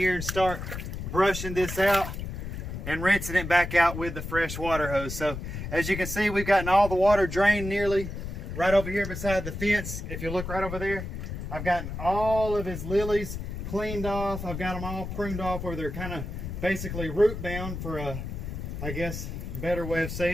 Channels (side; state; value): left; noise; rumble, 6 dB below the sound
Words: and start brushing this out and rinsing it back out with the fresh water hose. So as you can see, we've gotten all the water drained nearly right over here beside the fence. If you look right over there, I've gotten all of his lilies cleaned off. I've got them all pruned off where they're kind of basically root bound, for a, I guess, better way of